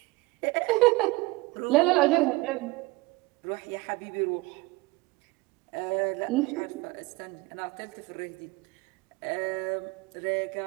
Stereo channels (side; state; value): left; quieter; 22.4 dB